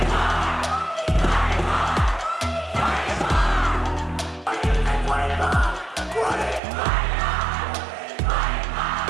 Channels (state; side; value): drops out; left; at 6.6 s